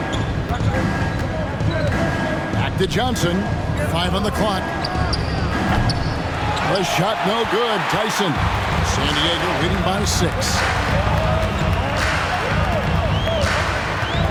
Back to Johnson. 5 on the clock. The shot no good. Tyson. San Diego leading by 6.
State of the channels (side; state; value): both; identical; correlation 1.00